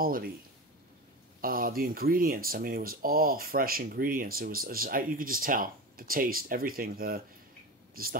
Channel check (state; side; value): normal; both; correlation 0.26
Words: the ingredients. It was all fresh ingredients. It was you could just tell the taste, everything, just the